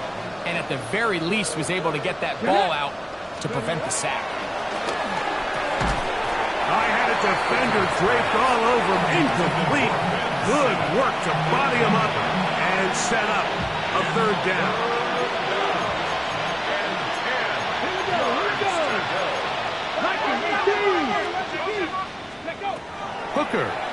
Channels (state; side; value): identical; both; correlation 1.00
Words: and at the very least was able to get that ball out to prevent the sack. I had a defender draped all over him. Incomplete. Good work to body him up and set up a 3rd down. Hooker.